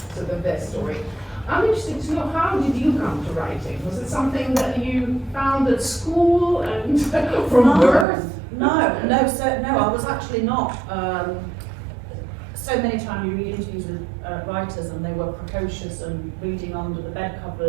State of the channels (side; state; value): left; drops out; at 8.1 s